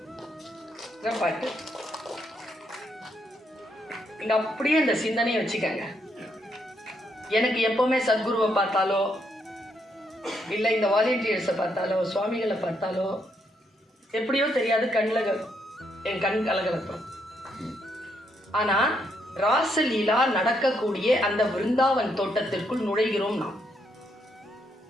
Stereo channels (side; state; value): both; normal; correlation 0.75